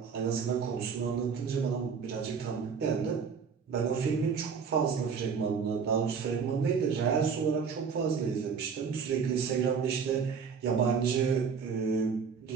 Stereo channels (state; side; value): quieter; left; 6.1 dB